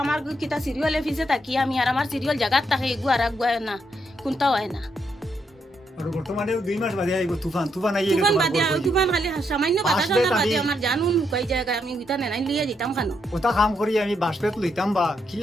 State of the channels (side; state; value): both; normal; correlation 0.78